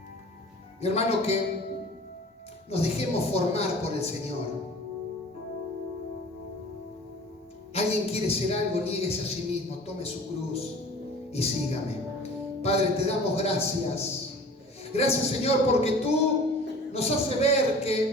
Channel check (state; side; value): normal; both; correlation 0.44